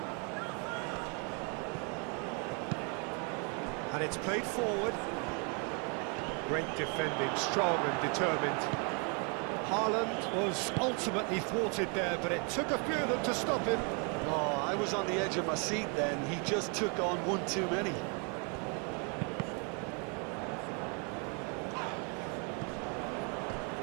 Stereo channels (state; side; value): quieter; left; 36.2 dB